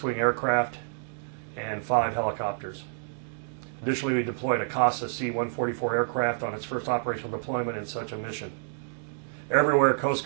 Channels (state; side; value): silent; left; digital silence